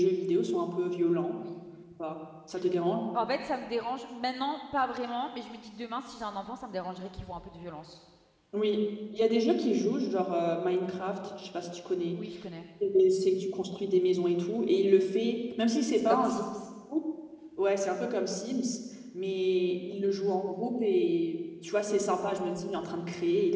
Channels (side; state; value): both; identical; correlation 1.00